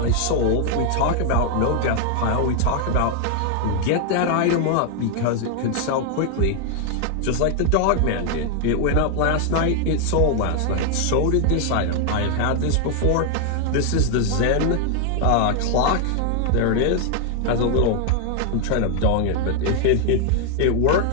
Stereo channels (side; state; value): both; different; correlation 0.00